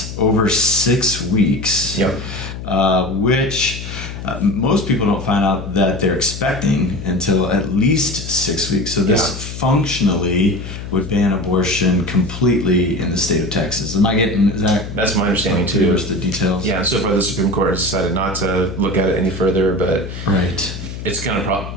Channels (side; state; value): left; noise; hum, 9 dB below the sound